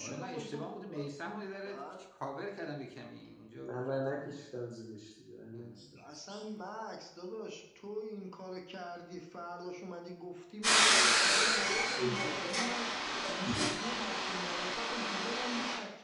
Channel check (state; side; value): identical; both; correlation 1.00